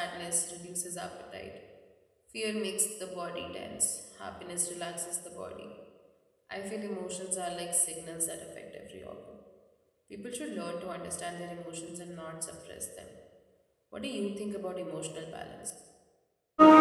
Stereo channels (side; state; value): both; identical; correlation 1.00